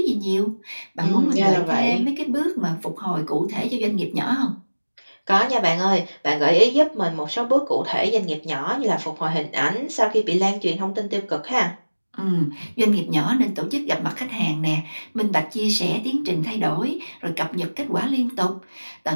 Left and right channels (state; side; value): inverted; both; correlation -1.00